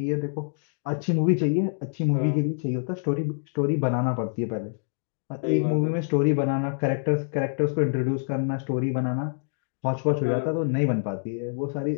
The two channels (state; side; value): silent; right; digital silence